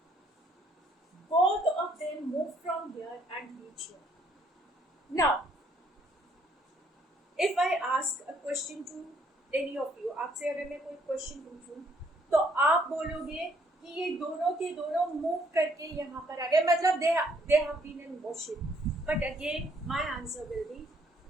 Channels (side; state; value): both; normal; correlation 0.67